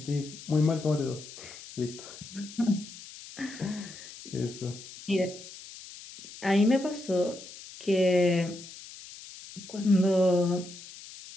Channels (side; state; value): left; noise; hiss, 15 dB below the sound